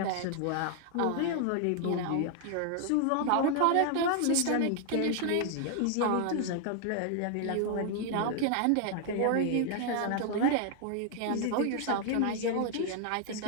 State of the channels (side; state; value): both; different; correlation 0.00